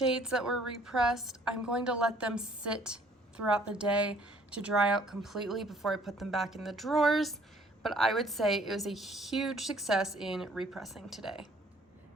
that were repressed. I'm going to let them sit throughout the day to dry out completely before I put them back in the drawers, but I would say it was a huge success in repressing today.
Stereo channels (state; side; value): normal; both; correlation 0.59